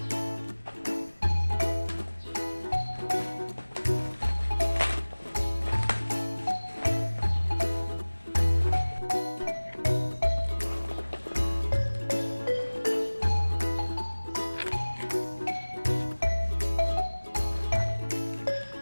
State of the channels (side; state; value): both; inverted; correlation -1.00